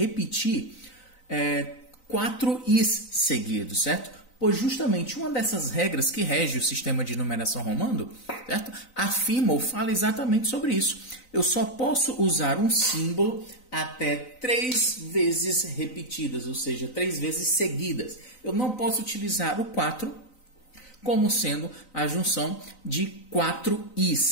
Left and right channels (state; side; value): late; right; 3.9 ms